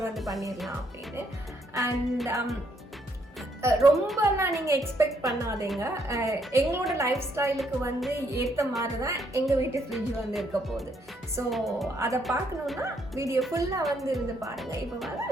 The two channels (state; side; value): normal; both; correlation 0.72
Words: வந்து பண்ணிடலாம் அப்படின்னு. அண்ட் ரொம்பலாம் நீங்கள் எக்ஸ்பெக்ட் பண்ணாதீங்க. எங்களோட லைஃப் ஸ்டைலுக்கு வந்து ஏற்ற மாதிரி தான் எங்கள் வீட்டு ஃப்ரிட்ஜ் வந்து இருக்க போகுது. ஸோ அதை பார்க்கணுன்னா வீடியோ ஃபுல்லாக வந்து இருந்து பாருங்கள். இப்போ வாங்க